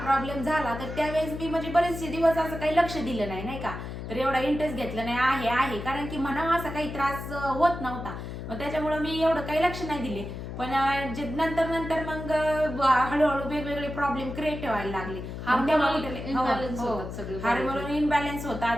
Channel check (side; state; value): left; noise; hum, 8 dB below the sound